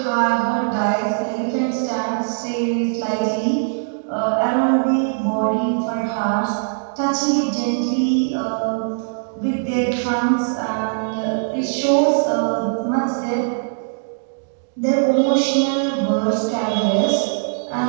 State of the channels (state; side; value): silent; left; digital silence